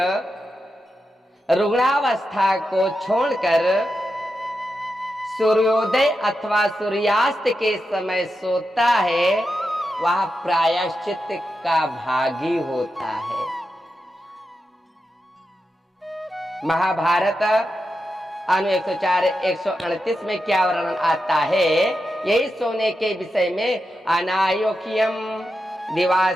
रुग्णावस्था को छोड़कर सूर्योदय अथवा सूर्यास्त के समय सोता है वह प्रायश्चित का भागी होता है। महाभारत अनु 104 138 में क्या वर्णन आता है यही सोने के विषय में? अनायोक्यम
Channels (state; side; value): normal; both; correlation 0.88